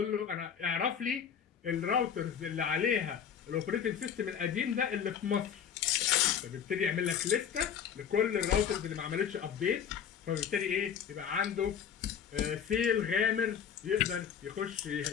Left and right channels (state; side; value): quieter; right; 8.1 dB